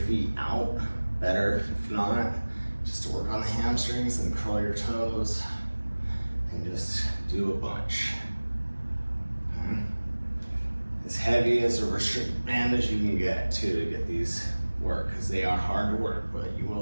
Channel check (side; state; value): both; inverted; correlation -1.00